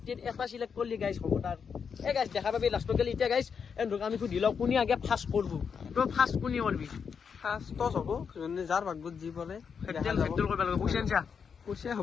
এটা চিলেক্ট কৰিলে গাইজ হ'ব তাৰ গাইজ দেখা পাবি লাষ্টত গেলি এতিয়া গাইজ এন্দুক আমি সুধি লওঁ কোনে আগে ফাৰ্ষ্ট কৰবো তই ফাৰ্ষ্ট কোনে কৰবি ফাৰ্ষ্ট টছ হ'ব যাৰ ভাগ্যত যি পৰে পইচা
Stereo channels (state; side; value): quieter; right; 6.4 dB